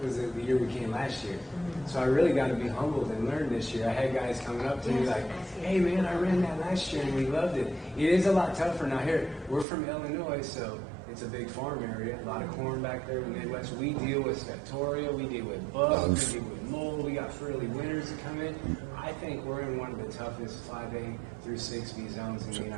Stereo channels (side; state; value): left; drops out; at 9.7 s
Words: was the year we came last year. So I really got to be humbled and learn this year. I had guys coming up to me like, hey man, I ran that last year and we loved it. It is a lot tougher. Now here, we're from Illinois, so it's a big farm area, a lot of corn back there in the Midwest. We deal with Septoria, we deal with bugs, we deal with mold, we got early winters that come in. I think we're in one of the toughest 5A through 6B zones in the